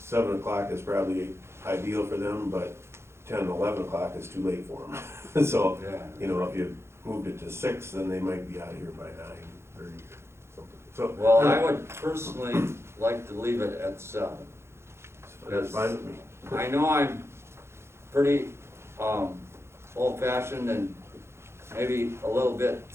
o'clock is probably ideal for them, but 10, 11 o'clock is too late for them. So, Yeah. you know, if you moved it to 6, then they might be out of here by 9:30 or something. So. Well, I would personally like to leave it at 7. That's fine with me. I know I'm pretty old-fashioned and maybe a little bit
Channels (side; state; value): left; late; 0.13 ms